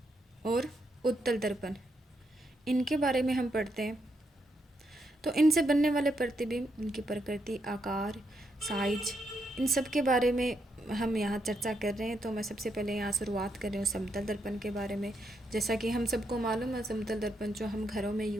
और उत्तल दर्पण। इनके बारे में हम पढ़ते हैं। तो इनसे बनने वाले प्रतिबिंब, इनकी प्रकृति, आकार, साइज, इन सब के बारे में हम यहाँ चर्चा कर रहे हैं। तो मैं सबसे पहले यहाँ शुरुआत कर रही हूँ समतल दर्पण के बारे में। जैसा कि हम सबको मालूम है, समतल दर्पण जो हम घरों में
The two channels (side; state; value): both; normal; correlation 0.80